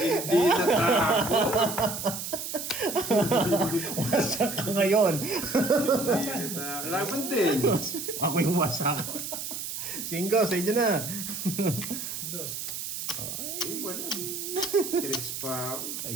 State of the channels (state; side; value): noise; right; hiss, 6 dB below the sound